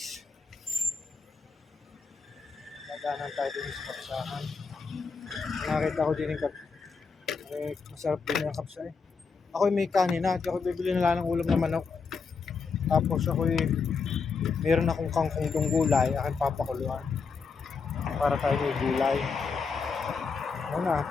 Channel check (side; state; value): right; quieter; 5.1 dB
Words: Naganan tayo din sa kapsahan. Nakita ko din yung masarap din yung kapsa eh. Ako may kanina. At ako bibili na lang ng ulam na manok. Tapos ako meron akong kangkong gulay. Aking papakuluan. Para tayo may gulay. Ano na.